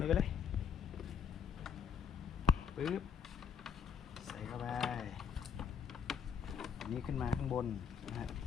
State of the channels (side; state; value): right; quieter; 6.9 dB